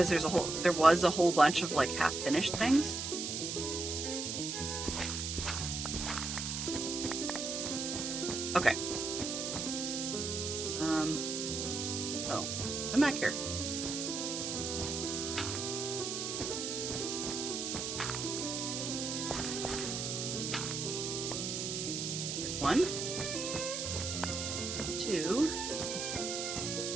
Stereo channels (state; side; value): noise; right; hiss, 3 dB below the sound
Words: there was a whole bunch of like half-finished things. Okay. Oh, I'm back here. There's 1, 2.